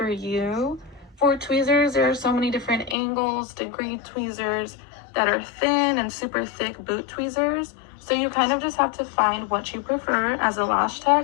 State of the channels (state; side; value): drops out; right; at 3.0 s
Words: you. For tweezers, there are so many different angles, degree tweezers that are thin and super thick boot tweezers. So you kind of just have to find what you prefer as a lash